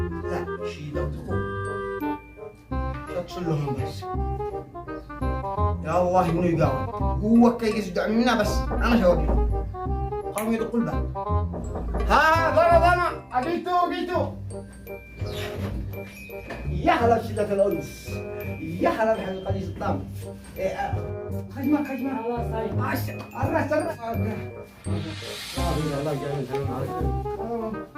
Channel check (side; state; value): both; identical; correlation 1.00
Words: لا شي لو تقول اتصل لهم بس يا الله انه يقاوم هو كي يصدع منا بس انا شوقي قاموا يدقوا الباب ها ضرب انا جيتو يا هلا بشدة الأنس يا هلا بحلقة قديس الطعم خجمة الله صايب الرأس الله يجعل الحلم عليك